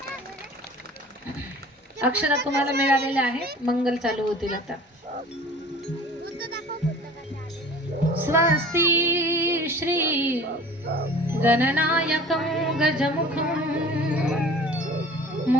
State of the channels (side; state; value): both; normal; correlation 0.44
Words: अक्षरा तुम्हाला मिळालेल्या आहेत. मंगल चालू होतील आता. स्वस्ति श्री गणनायकं गजमुखं